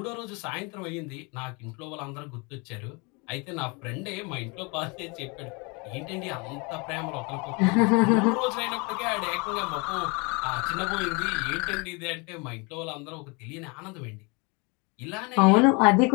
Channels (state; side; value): quieter; right; 29.8 dB